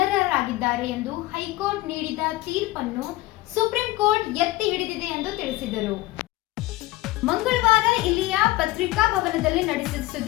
ಎಂದು ಹೈಕೋರ್ಟ್ ನೀಡಿದ ತೀರ್ಪನ್ನು ಸುಪ್ರೀಂ ಕೋರ್ಟ್ ಎತ್ತಿ ಹಿಡಿದಿದೆ ಎಂದು ತಿಳಿಸಿದರು. ಮಂಗಳವಾರ ಇಲ್ಲಿಯ ಪತ್ರಿಕಾ ಭವನದಲ್ಲಿ ನಡೆಸಿದ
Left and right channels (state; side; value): quieter; right; 18.4 dB